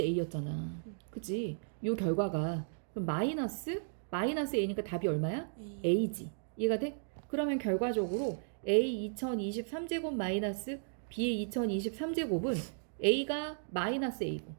a였잖아. 그치? 요 결과가 그럼 마이너스 a니까 답이 얼마야? a지. 이해가 돼? 그러면 결과적으로 a 2023제곱 마이너스 b의 2023제곱은 a가 마이너스 a고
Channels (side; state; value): left; silent; digital silence